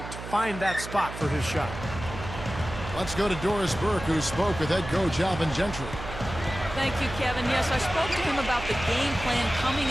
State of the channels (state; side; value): noise; right; hum, 10 dB below the sound